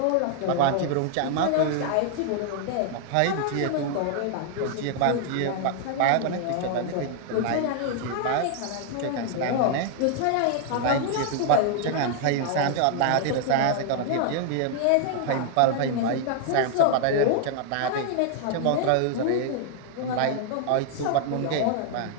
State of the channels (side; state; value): both; different; correlation 0.00